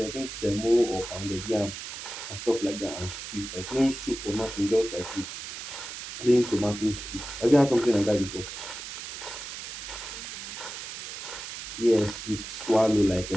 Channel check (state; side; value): noise; right; hiss, 9 dB below the sound